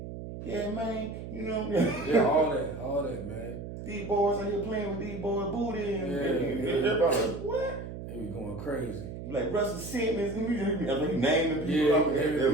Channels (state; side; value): noise; right; hum, 9 dB below the sound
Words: Yeah, man, you know. Yeah, all that, man. These boys out here playing with these boys' booty. And everybody like, what? They be going crazy. Like Russell Simmons, and he naming people. Yeah, They're